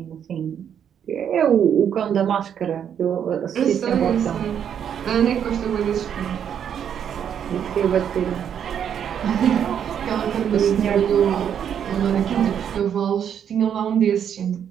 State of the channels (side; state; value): left; quieter; 8.7 dB